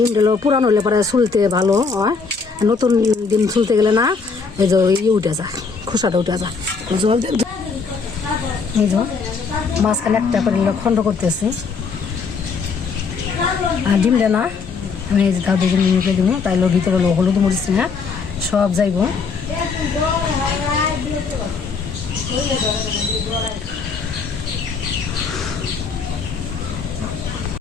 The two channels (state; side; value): quieter; right; 5.0 dB